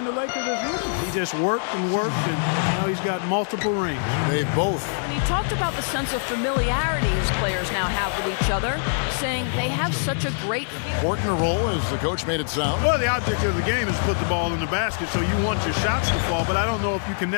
the Lakers as rookies. He just worked, and now he's got multiple rings. They both. And he talked about the sense of familiarity his players now have with each other, saying they have such a great feel. Important a role as the coach made it sound. Well, the object of the game is to put the ball in the basket, so you want your shots to fall, but I don't know if you can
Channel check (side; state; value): right; silent; digital silence